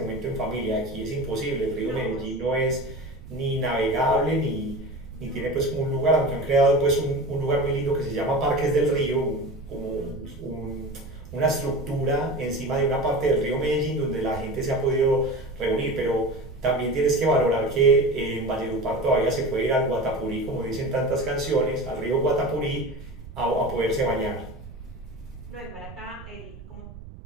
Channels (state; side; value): noise; right; rumble, 15 dB below the sound